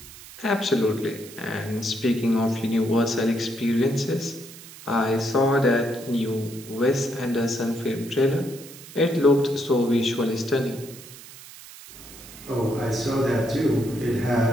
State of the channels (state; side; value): noise; right; hiss, 17 dB below the sound